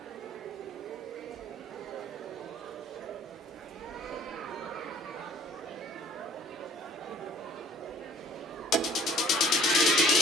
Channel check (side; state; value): both; normal; correlation 0.53